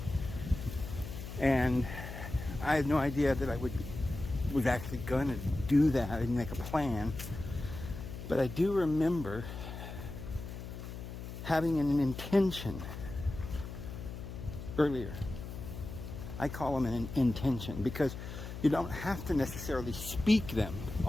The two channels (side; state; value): left; noise; hum, 9 dB below the sound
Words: And I had no idea that I was actually going to do that. I didn't make a plan. But I do remember having an intention earlier. I call them an intention because you don't have to necessarily speak them,